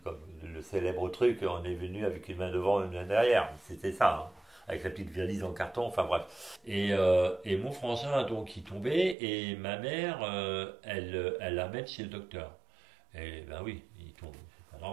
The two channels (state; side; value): drops out; left; at 9.2 s